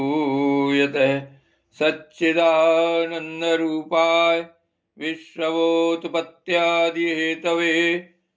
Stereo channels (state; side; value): identical; both; correlation 1.00